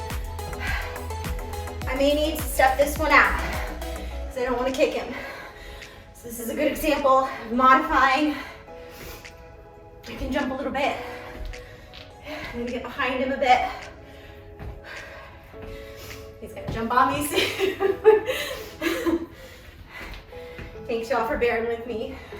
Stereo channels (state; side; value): identical; both; correlation 1.00